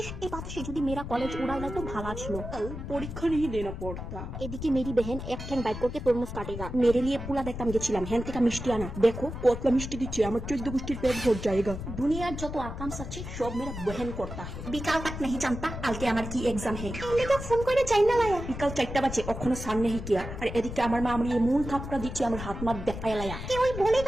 এই বাতাসে যদি मेरा কলেজ উড়ালে তো ভালো ছিল। পরীক্ষা नहीं देना पड़ता। এদিকে মেরি বেহেন এক ঠ্যাং বাইক করকে তরমুজ কাটেগা। মেরে লিয়ে পুলা দেখতাম গেছিলাম, হ্যান থেকে মিষ্টি আনা। देखो কতলা মিষ্টি দিচ্ছে, আমার 14 গোষ্ঠীর পেট ভর जाएगा। দুনিয়ার যত আকাম আছে সব মেরা বহন করতা है। বিকাল तक नहीं जानता কালকে আমার কি এক্সাম है। এলে তো ফোন করে চাই না লায়া। বিকাল 4টা বাজে, অখনো সান নেই কিয়া। আর এদিকে আমার মা আমার এমন থাপড়া দিচ্ছে, আমার হাত মাত দেখায় লায়া। कोई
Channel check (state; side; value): noise; left; rumble, 8 dB below the sound